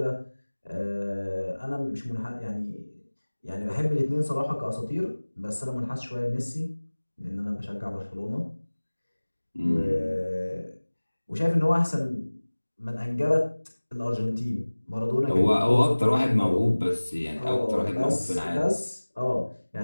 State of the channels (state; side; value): inverted; both; correlation -1.00